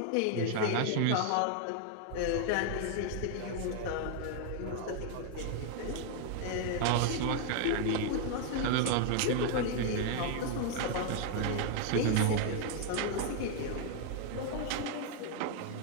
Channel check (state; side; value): different; both; correlation 0.00